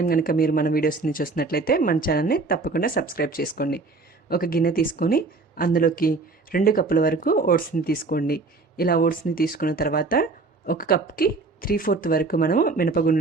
కనుక మీరు మన వీడియోస్ని చూసినట్లయితే మన ఛానల్ని తప్పకుండా సబ్స్క్రైబ్ చేసుకోండి. ఒక గిన్నె తీసుకొని అందులోకి 2 కప్పుల వరకు ఓట్స్ని తీసుకోండి. ఇలా ఓట్స్ని తీసుకున్న తర్వాత 1 కప్కి 3/4 వరకు మనం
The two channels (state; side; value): quieter; left; 3.8 dB